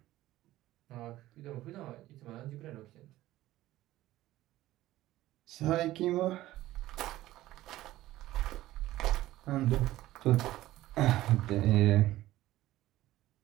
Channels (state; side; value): quieter; left; 15.8 dB